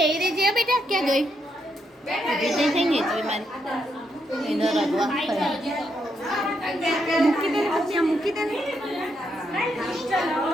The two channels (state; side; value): normal; both; correlation 0.79